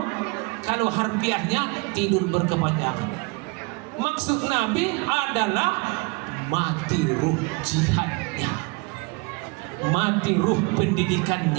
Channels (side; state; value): left; quieter; 28.7 dB